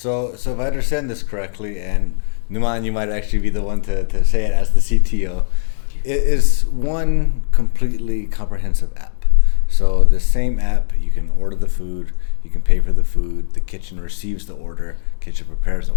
if I understand this correctly, and Nouman, you might actually be the one to say it as the CTO, it is one completely comprehensive app. So the same app, you can order the food, you can pay for the food, the kitchen receives the order, kitchen prepares the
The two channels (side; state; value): right; silent; 68 dB below the other